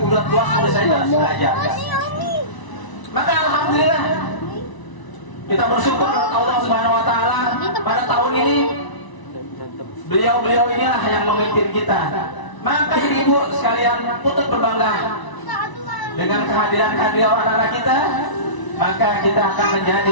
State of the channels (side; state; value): right; late; 1.0 ms